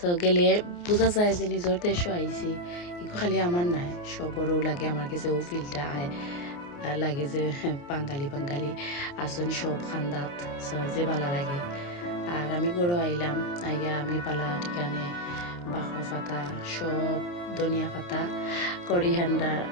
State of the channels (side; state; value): right; late; 29 ms